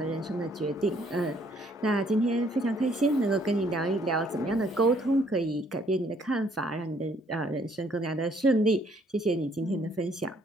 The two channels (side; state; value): both; normal; correlation 0.65